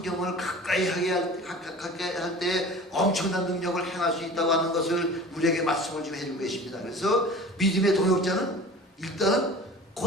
가까이 하게 할 때 엄청난 능력을 행할 수 있다고 하는 것을 우리에게 말씀을 좀 해주고 계십니다. 그래서 믿음의 동역자는 일단은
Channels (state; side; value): normal; both; correlation 0.40